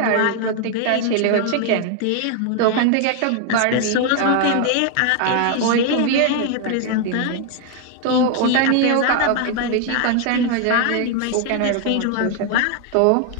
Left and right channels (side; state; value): both; different; correlation 0.00